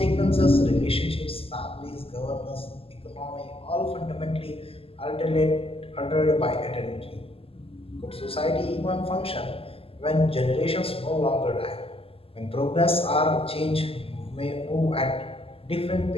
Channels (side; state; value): right; late; 0.27 ms